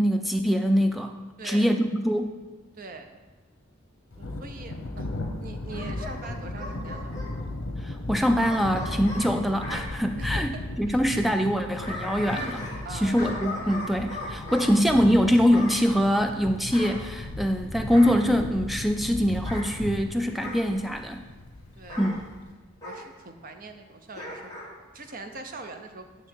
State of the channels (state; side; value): normal; both; correlation 0.89